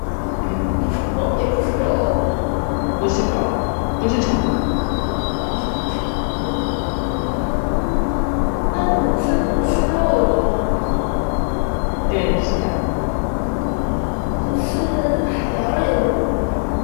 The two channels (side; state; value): right; silent; 63 dB below the other